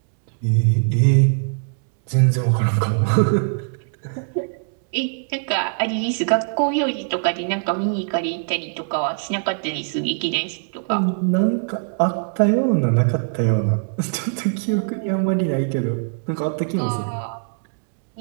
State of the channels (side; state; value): left; silent; digital silence